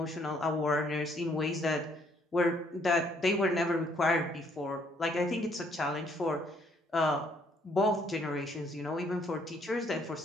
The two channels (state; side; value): normal; both; correlation 0.66